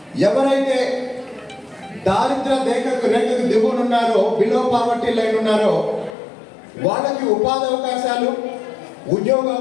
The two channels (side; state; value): right; drops out; at 6.2 s